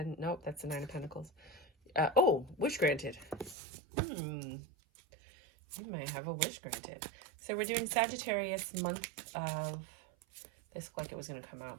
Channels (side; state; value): left; drops out; at 3.6 s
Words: Nope, that's the Nine of Pentacles. Oh, wish granted. You may have a wish granted. So we're doing Sagittarius month of... This looked like it was going to come